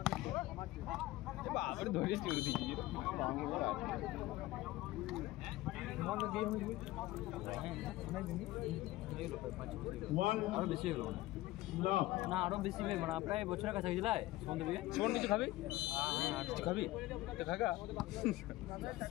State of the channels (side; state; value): right; quieter; 17.5 dB